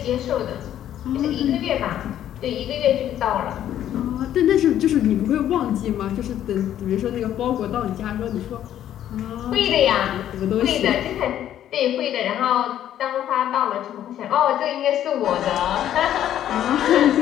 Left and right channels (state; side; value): quieter; right; 11.2 dB